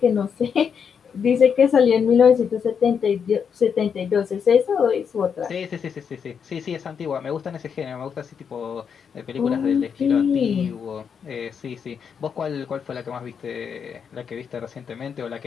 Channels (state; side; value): quieter; right; 6.9 dB